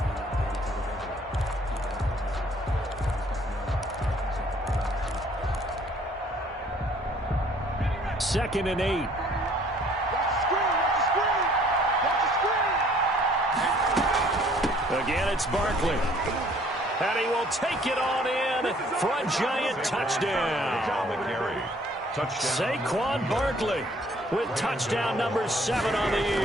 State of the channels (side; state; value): both; normal; correlation 0.58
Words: Second and 8. Again, it's Barkley. And he will take it on in for a giant touchdown. Saquon Barkley with touchdown number 7 on the